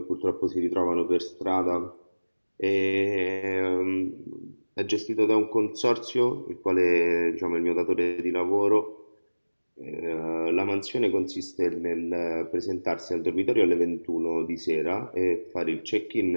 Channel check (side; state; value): both; inverted; correlation -1.00